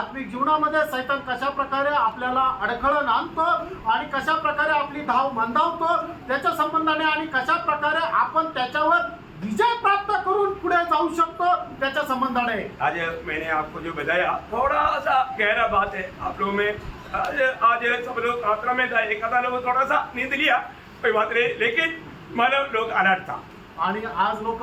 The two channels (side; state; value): both; identical; correlation 1.00